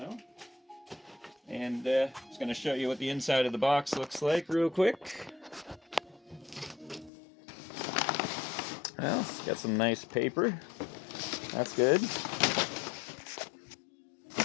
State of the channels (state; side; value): drops out; right; at 7.1 s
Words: And just going to show you what the inside of the box looks like real quick. Well, it's got some nice paper. That's good.